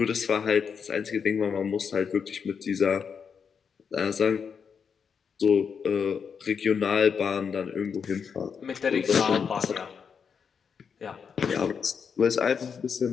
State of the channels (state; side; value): quieter; right; 6.5 dB